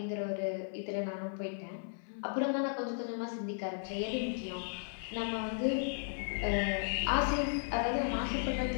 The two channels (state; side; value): silent; right; 54 dB below the other